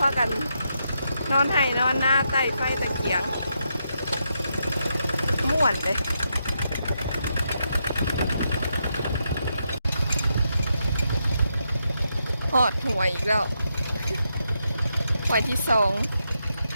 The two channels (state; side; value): inverted; both; correlation -0.82